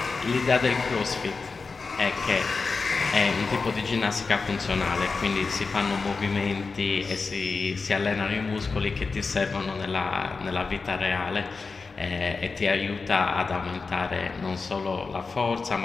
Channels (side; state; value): right; quieter; 4.4 dB